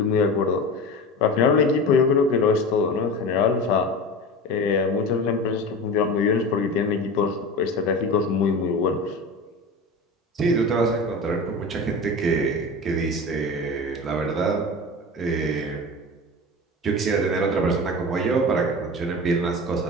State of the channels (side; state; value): both; normal; correlation 0.30